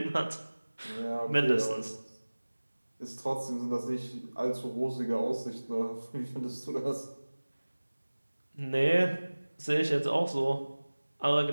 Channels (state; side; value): inverted; both; correlation -1.00